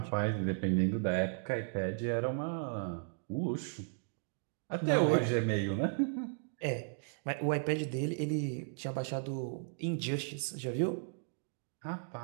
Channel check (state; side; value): silent; left; digital silence